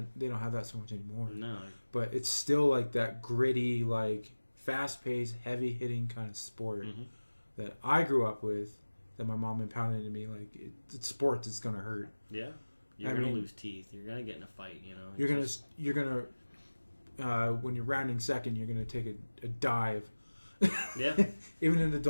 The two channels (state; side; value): inverted; both; correlation -1.00